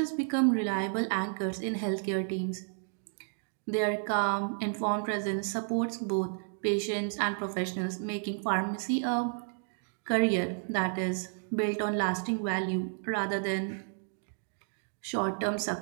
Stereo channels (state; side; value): silent; left; digital silence